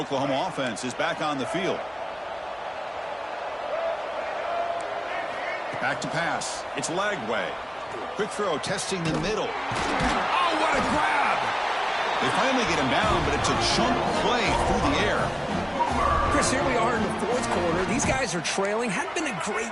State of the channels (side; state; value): both; identical; correlation 1.00